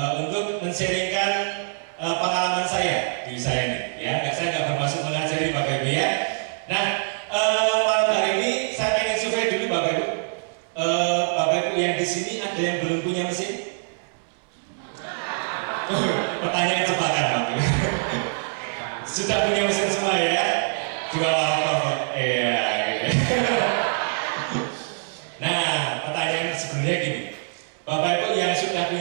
untuk men-sharingkan pengalaman saya di usaha ini. Ya, saya nggak bermaksud mengajari Bapak Ibu ya. Nah, malam hari ini saya pengen survei dulu Bapak Ibu. Bapak Ibu yang di sini ada yang belum punya mesin? Pertanyaan jebakan Bapak Ibu. Sudah punya mesin semua ya? Dua laptop. Iya. Nah, pertanyaan sebenarnya gini. Bapak Ibu yang sudah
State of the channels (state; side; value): silent; left; 62 dB below the other